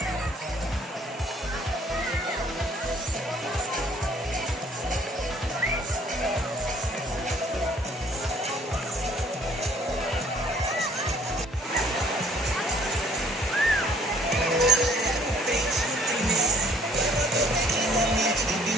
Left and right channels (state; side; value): normal; both; correlation 0.58